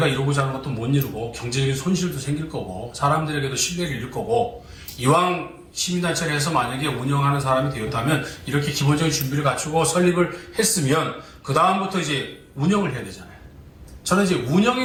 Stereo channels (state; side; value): identical; both; correlation 1.00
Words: 이루고자 하는 것도 못 이루고 경제적인 손실도 생길 거고 사람들에게도 신뢰를 잃을 거고 이왕 시민단체를 해서 만약에 운영하는 사람이 되었다면 이렇게 기본적인 준비를 갖추고 설립을 했으면 그 다음부터 이제 운영을 해야 되잖아요. 저는 이제